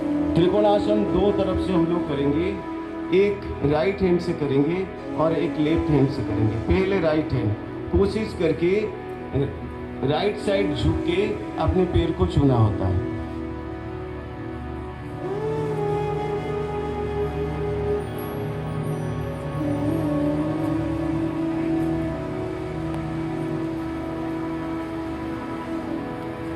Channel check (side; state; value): both; identical; correlation 1.00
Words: त्रिकोणासन दो तरफ से हम लोग करेंगे, एक राइट हैंड से करेंगे और एक लेफ्ट हैंड से करेंगे। पहले राइट हैंड, कोशिश करके राइट साइड झुक के अपने पैर को छूना होता है।